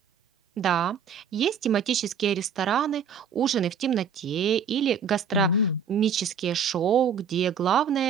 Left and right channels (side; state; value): left; quieter; 6.7 dB